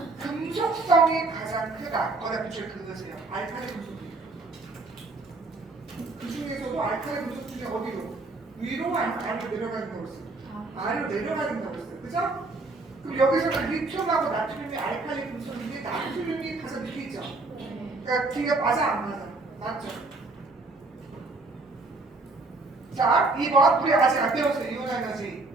금속성이 가장 크다. 거기다 밑줄 그으세요. 알칼리 금속이에요. 그 중에서도 알칼리 금속 중에 어디로? 위로 아래로 내려가는 거로 했어요. 아래로 내려가는 거로 했어요. 그죠? 그럼 여기서는 리튬하고 나트륨이 알칼리 금속인데 나트륨이 가장 밑에 있죠? 그러니까 뒤가 맞아 안 맞아? 맞죠? 자, 2번. 우리 아직 안 배웠어요. 이온 에너지.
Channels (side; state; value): left; quieter; 3.4 dB